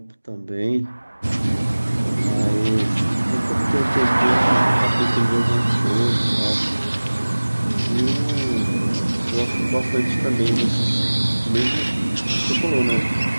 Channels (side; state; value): both; inverted; correlation -1.00